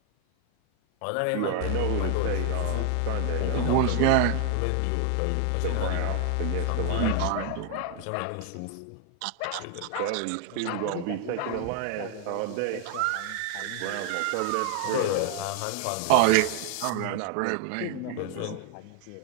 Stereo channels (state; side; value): different; both; correlation 0.00